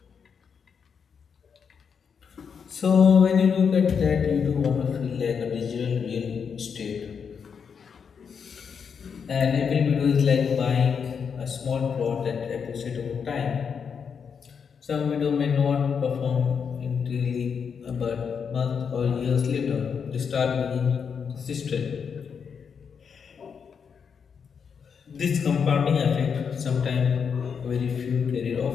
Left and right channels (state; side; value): quieter; right; 6.6 dB